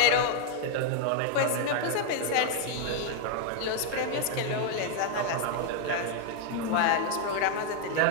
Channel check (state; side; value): different; both; correlation 0.00